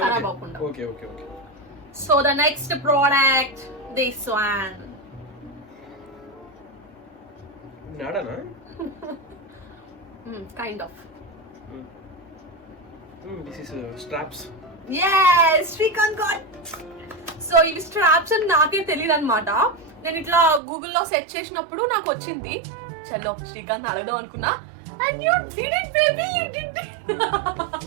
ఖరాబ్ అవ్వకుండా. Okay okay okay. So the next product this one. నాడానా? Kind of. This is straps. yes Srikanth got. సో ఇవి straps అని నాకే తెలియదు అనమాట. నేను ఇట్లా గూగుల్లో సెర్చ్ చేసినప్పుడు నాకు వచ్చింది. చలో శ్రీకాంత్ అడగదాం అనుకున్నా, and you did it baby, you did it.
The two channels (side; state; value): left; drops out; at 20.6 s